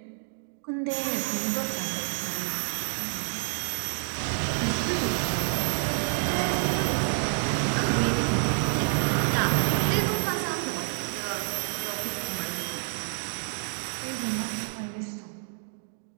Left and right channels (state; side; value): silent; left; 59 dB below the other